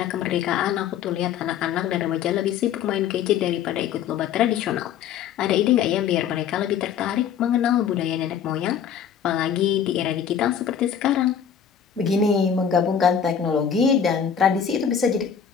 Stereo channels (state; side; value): quieter; right; 8.1 dB